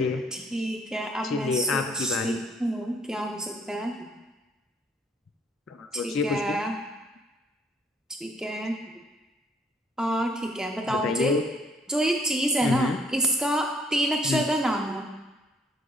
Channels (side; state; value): both; normal; correlation 0.64